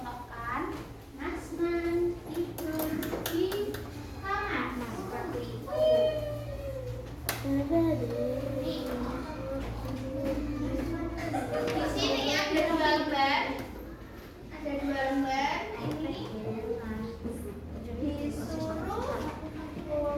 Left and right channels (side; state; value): both; identical; correlation 1.00